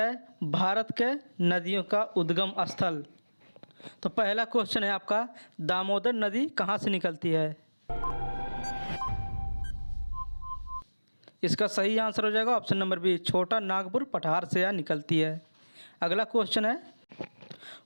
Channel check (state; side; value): inverted; both; correlation -1.00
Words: भारत के नदियों का उद्गम स्थल। तो पहला क्वेश्चन है आपका, दामोदर नदी कहाँ से निकलती है? इसका सही आंसर हो जाएगा ऑप्शन नंबर बी, छोटा नागपुर पठार से यह निकलती है। अगला क्वेश्चन है,